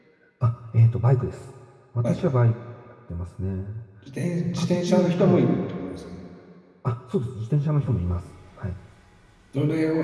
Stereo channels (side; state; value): both; identical; correlation 1.00